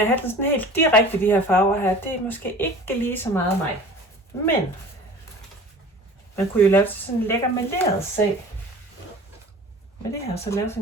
at have den sådan helt direkte, de her farver her, det er måske ikke lige så meget mig. Men man kunne jo lave sådan en lækker maleret sag. Med det her, så lave sådan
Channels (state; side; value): normal; both; correlation 0.42